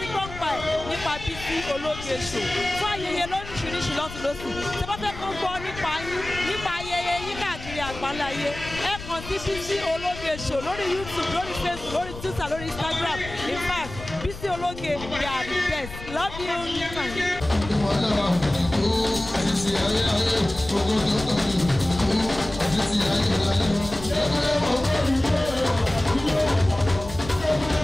gbọ́ ń pa ẹ̀ nípa Bísí Ológe Show fún ayẹyẹ lóríṣiríṣi lọ́tùlọ́sì. Ṣé bá fẹ́ kó gbọ́ nípa yín nípa ayẹyẹ yín káàkiri àgbáńláyé ẹ kàn sí Bísí Ológe Show lórí YouTube, lórí Facebook, lórí Twitter, lórí Instagram. In fact, Bísí Ológe they are the best. Love you.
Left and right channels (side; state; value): left; noise; rumble, 13 dB below the sound